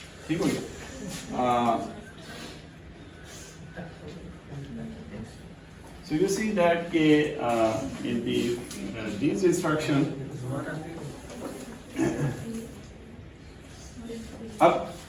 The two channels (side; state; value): both; identical; correlation 1.00